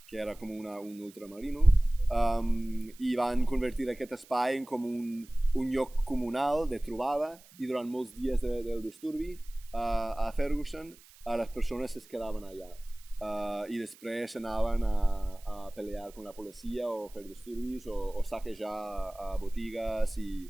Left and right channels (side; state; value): right; noise; hiss, 24 dB below the sound